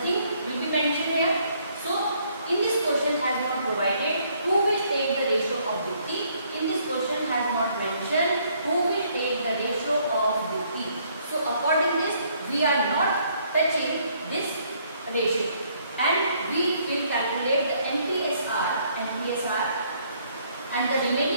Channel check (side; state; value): both; inverted; correlation -0.66